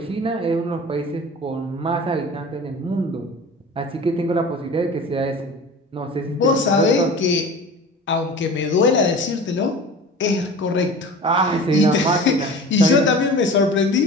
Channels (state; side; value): normal; both; correlation 0.38